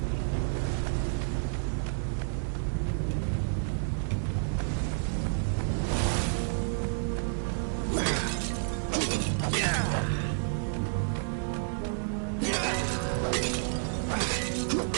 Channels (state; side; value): silent; left; digital silence